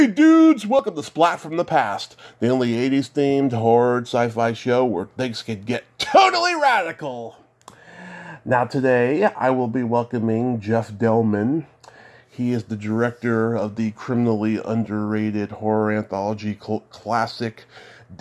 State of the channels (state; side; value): identical; both; correlation 1.00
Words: dudes, welcome to Splat from the Past, the only 80s themed horror sci-fi show where things can get totally radical. Now today, I will be welcoming Jeff Delman. He is the director of the criminally underrated horror anthology classic